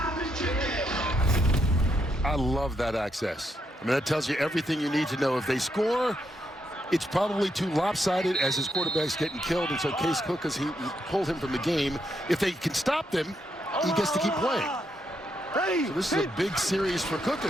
I love that access. I mean, that tells you everything you need to know. If they score, it's probably too lopsided as his quarterback's getting killed, and so Case Cook, as he pulled him from the game. If they can stop them, he gets to keep playing. So this is a big series for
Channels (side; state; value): both; normal; correlation 0.79